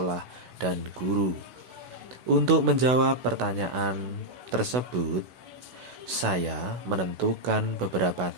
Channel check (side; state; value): left; late; 16 ms